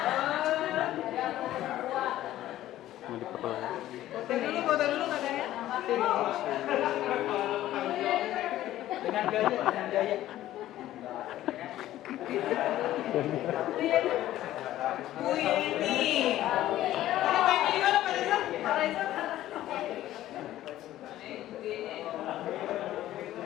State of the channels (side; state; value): right; quieter; 13.9 dB